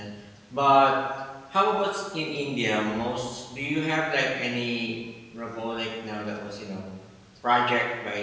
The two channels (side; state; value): both; identical; correlation 1.00